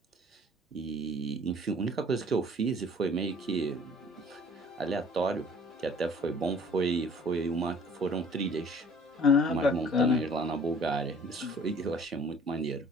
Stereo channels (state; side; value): normal; both; correlation 0.52